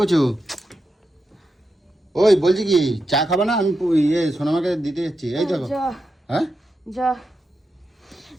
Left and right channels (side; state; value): both; normal; correlation 0.87